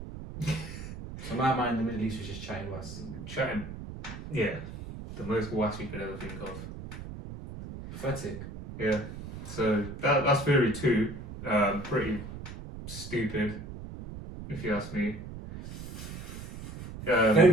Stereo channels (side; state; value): right; noise; rumble, 10 dB below the sound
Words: So in my mind, the Middle East was just chatting was Chatting. Yeah. The most wass you could ever think of. pathetic. Yeah. So that's theory 2. Pretty stupid, if you ask me.